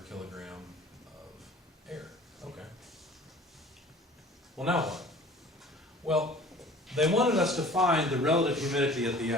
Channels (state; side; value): normal; both; correlation 0.47